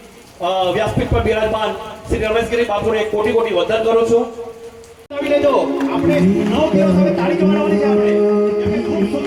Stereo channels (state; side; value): identical; both; correlation 1.00